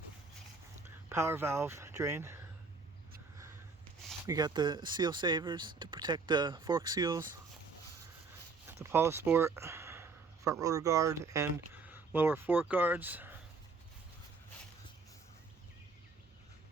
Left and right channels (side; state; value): left; quieter; 4.3 dB